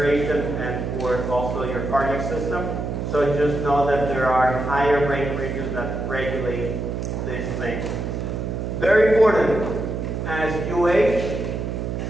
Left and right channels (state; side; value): noise; right; hum, 3 dB below the sound